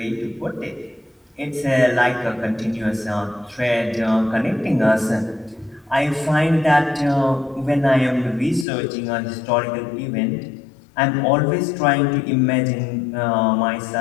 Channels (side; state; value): right; drops out; at 8.7 s